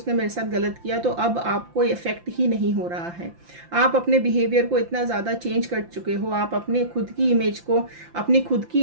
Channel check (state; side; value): late; left; 5.8 ms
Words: मेरे साथ गलत किया तो अब आपको इफेक्ट ही नहीं हो रहा है। आप अपने बिहेवियर को इतना ज़्यादा चेंज कर चुके हो, आप अपने खुद की इमेज को, अपनी खुद